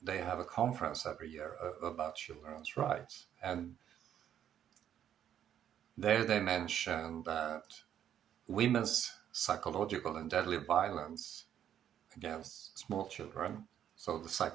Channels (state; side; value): quieter; left; 9.9 dB